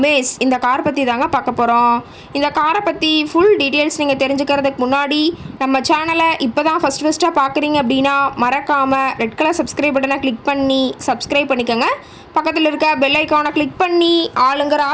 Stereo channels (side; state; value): both; identical; correlation 1.00